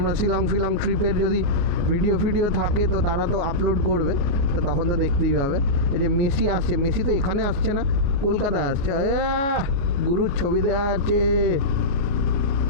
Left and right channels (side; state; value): left; late; 29 ms